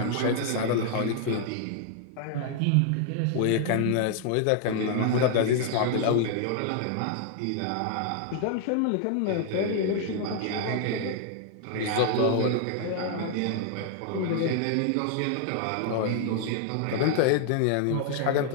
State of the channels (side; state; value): both; different; correlation 0.00